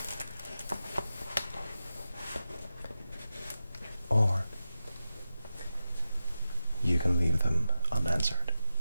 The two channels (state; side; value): inverted; both; correlation -0.91